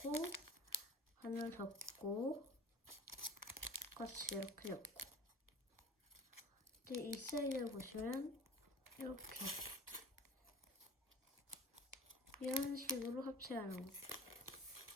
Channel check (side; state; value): both; normal; correlation 0.42